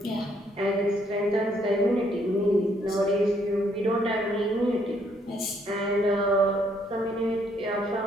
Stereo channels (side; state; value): both; normal; correlation 0.69